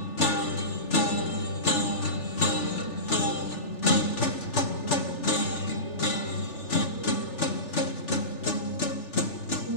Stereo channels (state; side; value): late; right; 3.4 ms